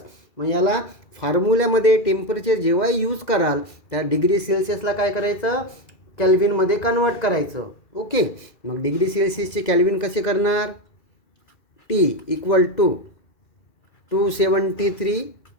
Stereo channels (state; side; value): late; right; 2.4 ms